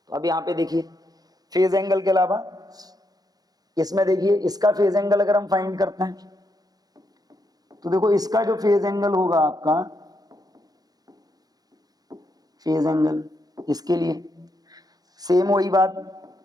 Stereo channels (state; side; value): late; left; 0.19 ms